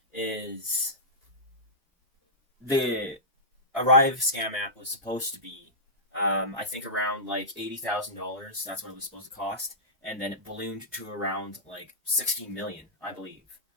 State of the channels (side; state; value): both; normal; correlation -0.15